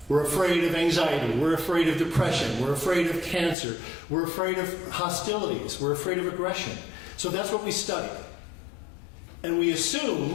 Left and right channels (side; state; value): right; drops out; at 3.6 s